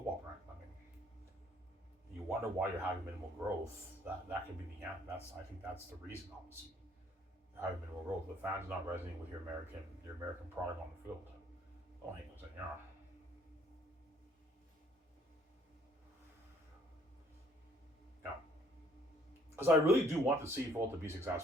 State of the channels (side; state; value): both; normal; correlation 0.62